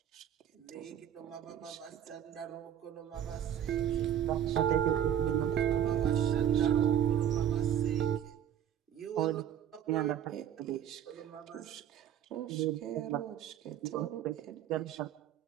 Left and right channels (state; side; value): quieter; left; 10.1 dB